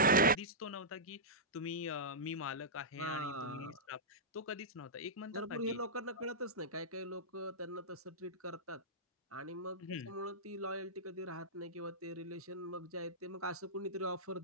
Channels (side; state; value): both; normal; correlation -0.13